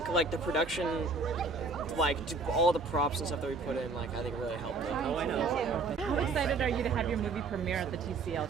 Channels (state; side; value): quieter; left; 4.0 dB